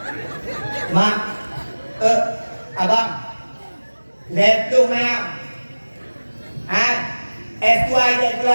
Mak, abang, lihat tu mayang. S2 je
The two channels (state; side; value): inverted; both; correlation -1.00